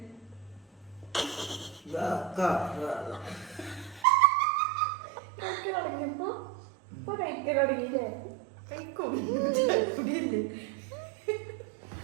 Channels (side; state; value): left; drops out; at 4.0 s